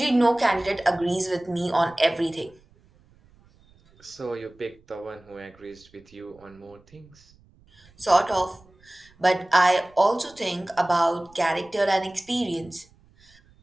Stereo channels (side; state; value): right; noise; rumble, 29 dB below the sound